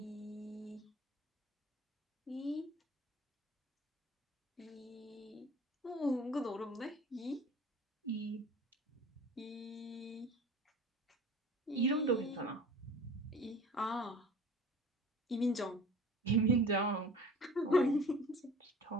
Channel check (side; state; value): both; normal; correlation 0.42